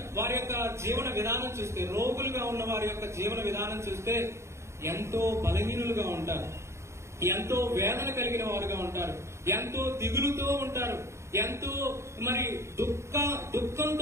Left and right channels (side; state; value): left; late; 0.13 ms